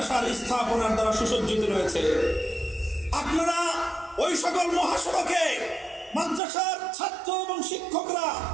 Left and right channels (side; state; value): left; drops out; at 6.4 s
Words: স্থাপনার দ্বারা সুসজ্জিত রয়েছে। আপনারা ওই সকল মহাসড়কে মাদ্রাসার ছাত্র এবং শিক্ষকরা